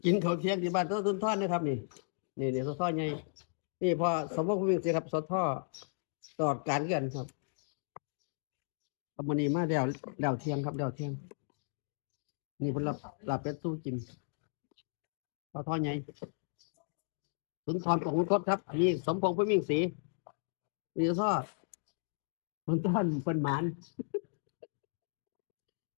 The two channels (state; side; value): silent; right; digital silence